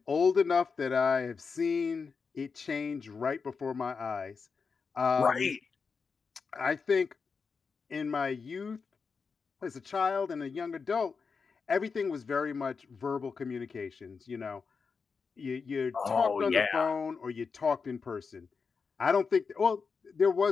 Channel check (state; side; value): quieter; right; 5.2 dB